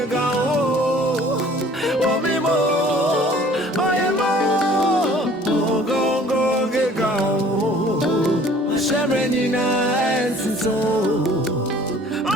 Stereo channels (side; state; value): both; normal; correlation 0.52